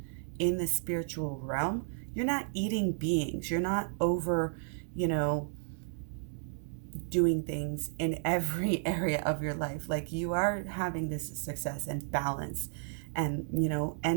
in the spiritual realm, you're not eating beings. You're not over, doing things in every area of your life. You are having this success and balance and,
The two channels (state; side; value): silent; left; digital silence